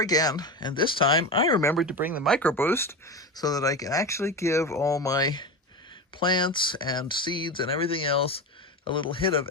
and this time I remembered to bring the micro boost so that I can actually give all my plants and seeds and everything else a little hit of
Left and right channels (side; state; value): both; normal; correlation 0.22